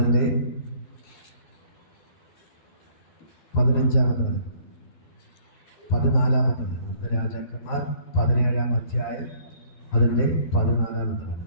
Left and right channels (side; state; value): right; late; 12 ms